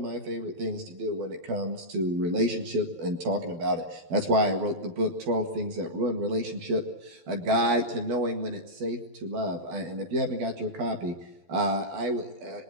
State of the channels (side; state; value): left; late; 12 ms